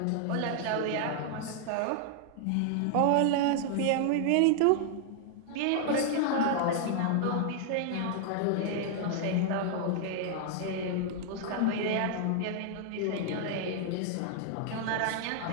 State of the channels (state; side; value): different; both; correlation 0.00